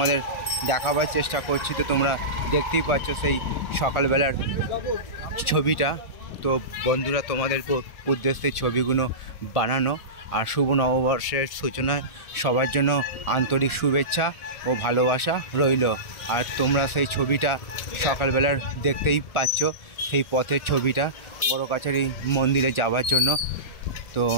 দেখাবার চেষ্টা করছি। তো তোমরা দেখতেই পাচ্ছ সেই সকালবেলার ছবিটা। তো বন্ধুরা, তোমাদের উদ্দেশ্যে ছবিগুলো বানানো। আর শুভ নববর্ষের সূচনা সবার জন্য আন্তরিক শুভেচ্ছা ও ভালোবাসা রইল। আর তোমরা সেই ছবিটা সকালবেলার দেখতেই পাচ্ছ, সেই পথের ছবিটা বড় কাছারি মন্দিরে যাওয়ার জন্য। তো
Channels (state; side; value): late; right; 1.4 ms